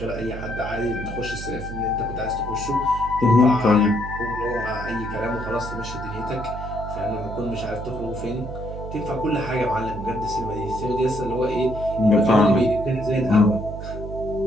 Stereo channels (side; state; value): right; noise; hum, 9 dB below the sound